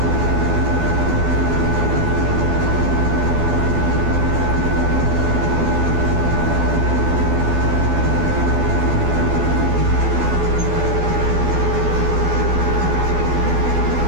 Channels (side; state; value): left; late; 12 ms